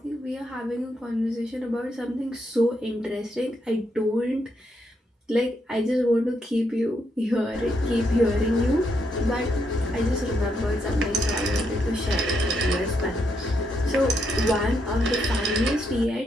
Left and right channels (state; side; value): normal; both; correlation 0.78